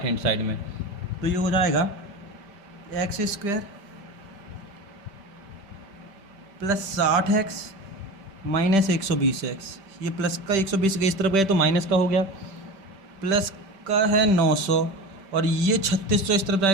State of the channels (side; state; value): left; late; 5.1 ms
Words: हैंड साइड में। तो ये हो जाएगा x square plus 60x minus 120x, ये प्लस का 120 के इस तरफ गए तो माइनस का हो गया, प्लस का है 900 और ये 3600 इस तरफ